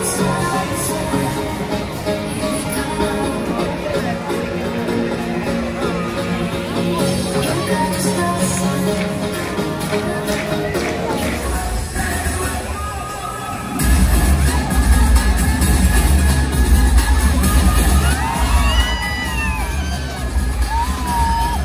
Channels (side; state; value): both; identical; correlation 1.00